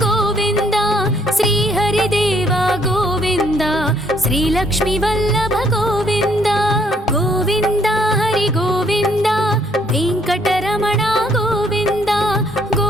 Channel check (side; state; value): both; normal; correlation 0.66